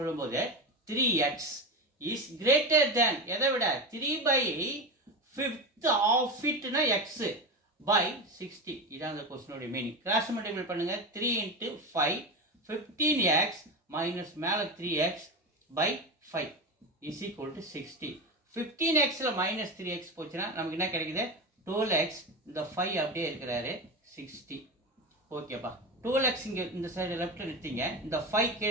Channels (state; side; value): normal; both; correlation 0.20